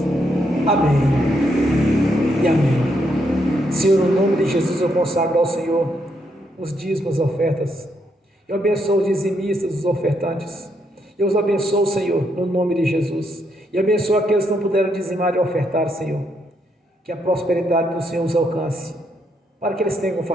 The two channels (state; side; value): normal; both; correlation 0.77